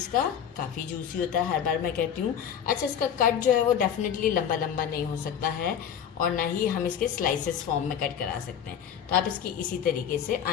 का। काफ़ी जूसी होता है, हर बार मैं कहती हूँ। अच्छा, इसका कट जो है वो डेफिनेटली लंबा लंबा नहीं हो सकता है और ना ही हम इसके स्लाइसेस फॉर्म में कट करा सकते हैं। तो आप इसकी इसी तरीके से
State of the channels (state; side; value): quieter; right; 8.6 dB